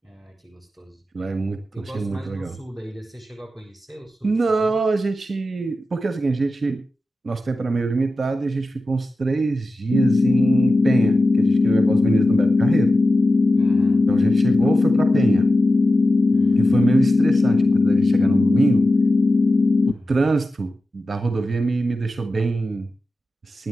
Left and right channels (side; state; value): both; normal; correlation 0.93